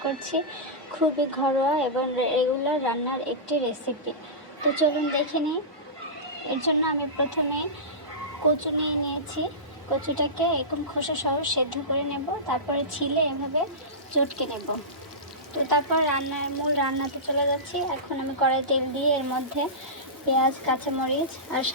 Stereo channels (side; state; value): both; normal; correlation -0.18